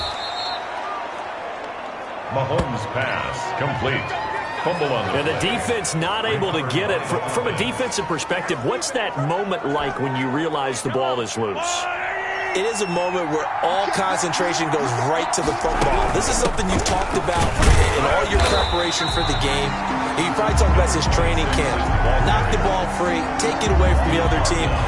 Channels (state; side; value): identical; both; correlation 1.00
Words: Mahomes' pass complete. Fumble on the And the defense not able to get it. From a defensive perspective, what's that moment like when you realize the ball is loose? It is a moment where all concentration goes right to the football. This is something you've talked about in all your preparation for the game. You probably talked about this training camp. Knock the ball free, take it away from the other team,